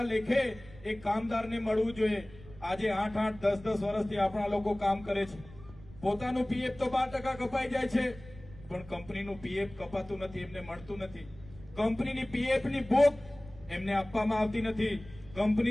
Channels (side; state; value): right; noise; rumble, 19 dB below the sound